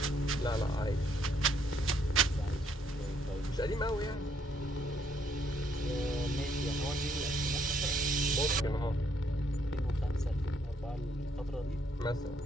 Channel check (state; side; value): normal; both; correlation 0.70